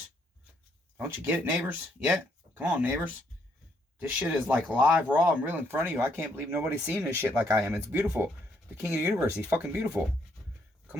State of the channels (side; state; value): both; normal; correlation 0.72